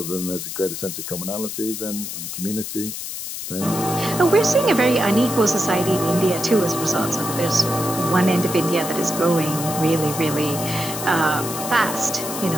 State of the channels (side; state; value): left; noise; hiss, 7 dB below the sound